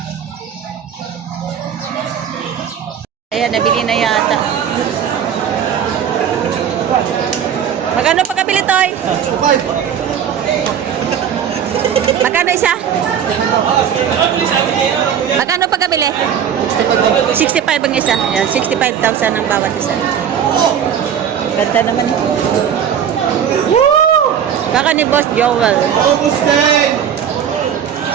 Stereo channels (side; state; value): left; quieter; 8.5 dB